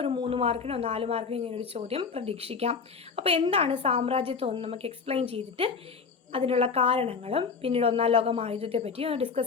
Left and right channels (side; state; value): right; quieter; 5.5 dB